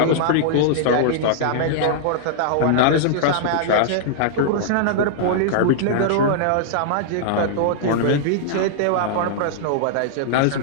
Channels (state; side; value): different; both; correlation -0.01